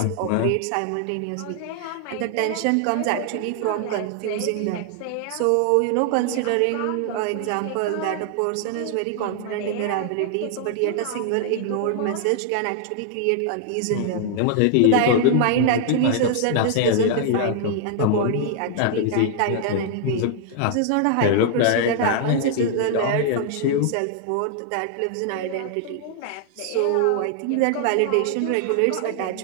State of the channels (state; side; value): different; both; correlation 0.00